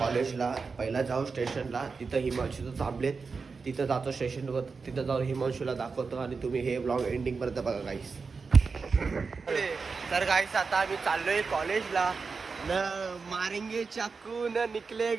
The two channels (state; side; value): quieter; left; 4.8 dB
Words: पहिला जाऊ स्टेशनला, तिथं हिमांशूचं थांबलेत, तिथं जातो स्टेशनवर, तिथं जाऊन हिमांशूला दाखवतो आणि तुम्ही हे व्लॉग एंडिंग पर्यंत बघा गाईस. तर गाईस आता आम्ही चाललोय कॉलेजला. न मारेंगे चाकू न